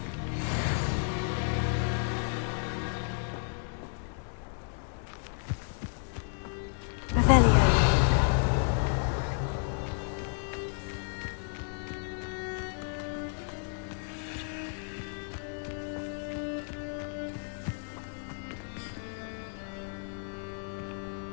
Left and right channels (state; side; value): silent; right; 55 dB below the other